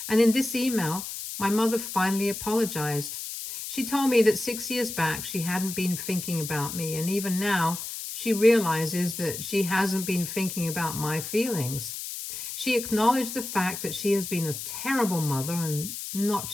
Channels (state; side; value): noise; left; hiss, 7 dB below the sound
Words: And in this email, my mother finally apologized. She told me that 6 years back, she hadn't been thinking about me. And even now, she realizes that she hasn't been thinking about my feelings. She acknowledged the fact that she has been a terrible mother, and not